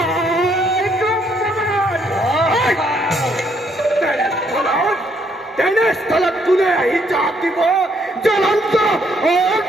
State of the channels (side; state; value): both; normal; correlation 0.70